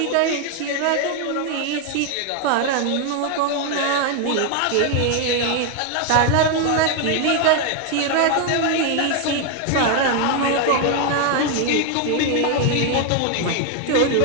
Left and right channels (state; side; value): different; both; correlation 0.01